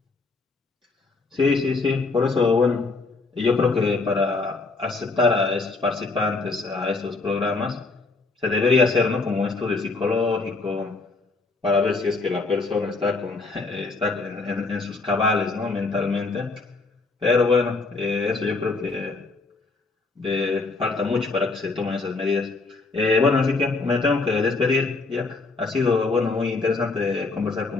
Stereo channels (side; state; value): right; quieter; 3.8 dB